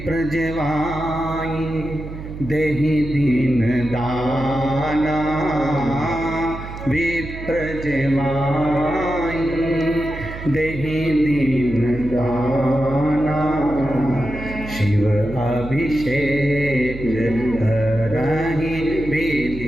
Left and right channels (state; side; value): noise; right; hum, 10 dB below the sound